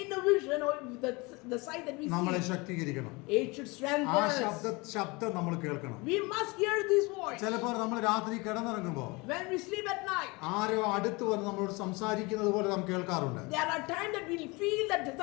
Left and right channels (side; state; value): right; quieter; 25.7 dB